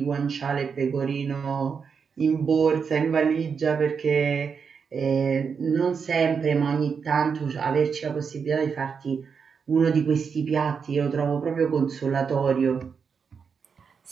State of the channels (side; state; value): left; quieter; 6.1 dB